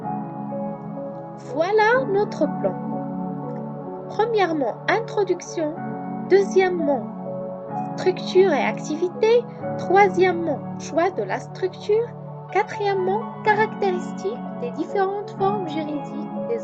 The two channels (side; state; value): both; identical; correlation 1.00